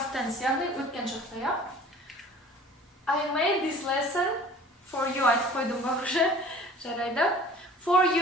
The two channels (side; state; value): both; normal; correlation 0.47